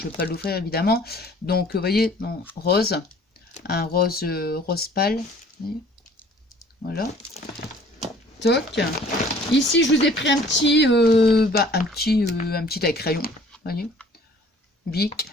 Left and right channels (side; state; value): both; normal; correlation 0.53